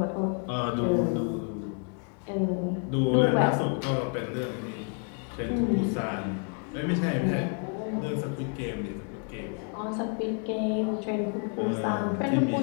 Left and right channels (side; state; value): right; quieter; 39.4 dB